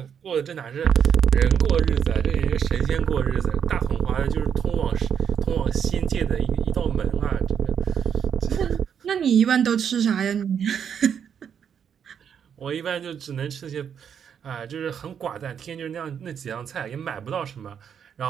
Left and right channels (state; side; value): quieter; left; 7.9 dB